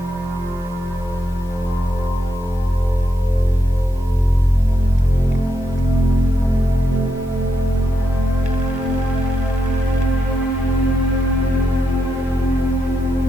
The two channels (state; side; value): normal; both; correlation 0.82